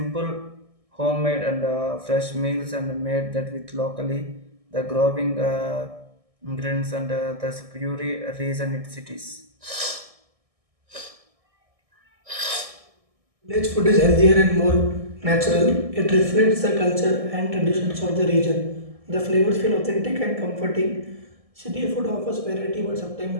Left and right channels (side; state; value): left; late; 1.7 ms